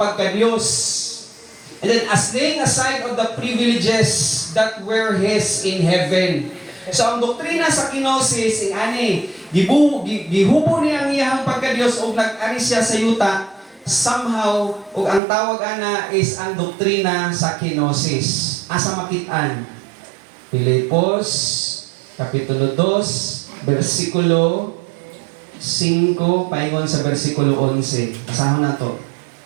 And then, as laying aside of the privileges that were his in heaven. So, ang doktrina sa kenosis, gihubo niya ang iyahang pagka-Diyos o nag-ari siya sa yuta, somehow, o ang tawag ana is ang doktrina sa kenosis. Asa makitaan? Filipos, Kapitulo 2, versikulo 5, paingon sa versikulo 11. Basahan na to.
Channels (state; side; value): drops out; left; at 15.2 s